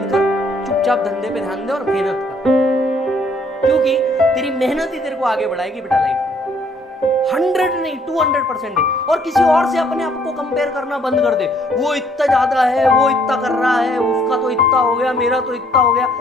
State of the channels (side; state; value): both; normal; correlation 0.64